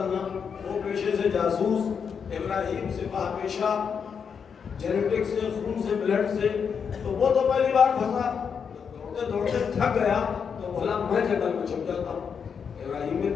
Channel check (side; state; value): right; quieter; 6.6 dB